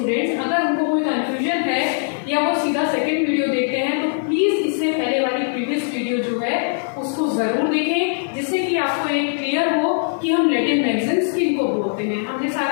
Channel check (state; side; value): silent; right; 64 dB below the other